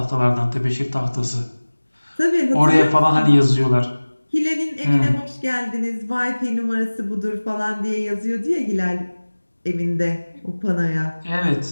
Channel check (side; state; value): both; inverted; correlation -1.00